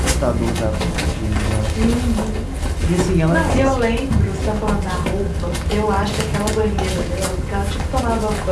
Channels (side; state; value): both; identical; correlation 1.00